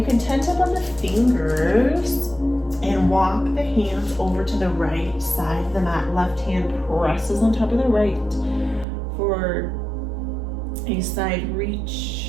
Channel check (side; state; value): left; drops out; at 8.8 s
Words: can tent up on the fingers and walk the hands over to the right side of the mat. Left hand presses on top of the right for a side